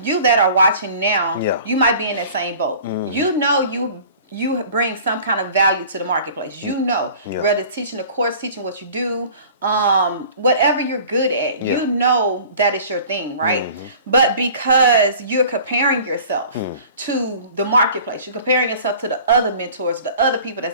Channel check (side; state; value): both; inverted; correlation -0.45